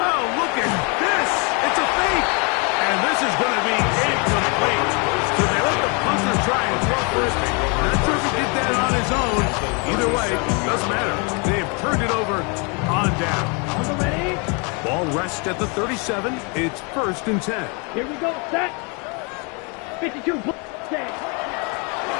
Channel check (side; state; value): right; quieter; 33.2 dB